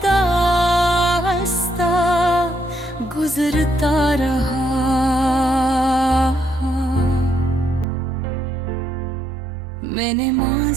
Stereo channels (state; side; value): drops out; left; at 7.9 s